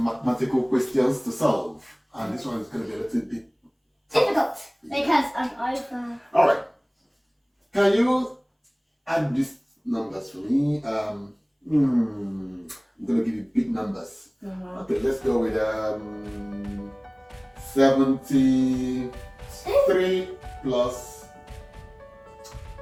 mathematical questions to solve. And this one is going to be a little bit difficult because I'm over. Alright. Can you add these numbers for me? I'm going to give you big numbers. Okay, let's go with 73 plus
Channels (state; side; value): identical; both; correlation 1.00